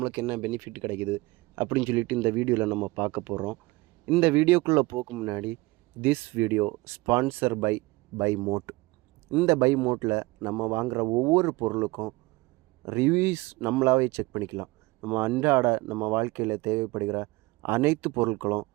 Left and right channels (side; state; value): left; quieter; 22.2 dB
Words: என்ன பெனிஃபிட் கிடைக்குது அப்படின்னு சொல்லிட்டு இந்த வீடியோவில் நம்ம பார்க்க போகிறோம். இந்த வீடியோக்குள்ளே போக முன்னாடி, this video sponsor by Mode. இந்த பை மோட்டில் நம்ம வாங்குகிற ஒவ்வொரு பொருளுக்கும் ரிவ்யூஸ் நம்மளாவே செக் பண்ணிக்கலாம். நம்ம வாழ்க்கையில் தேவைப்படுகிற அனைத்து பொருட்களும்